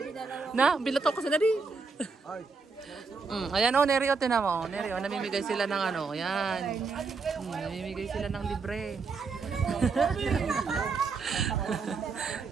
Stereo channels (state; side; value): quieter; left; 4.6 dB